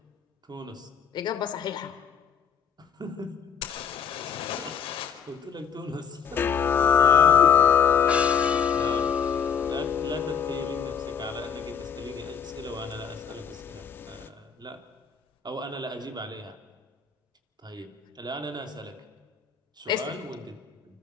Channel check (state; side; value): quieter; right; 7.2 dB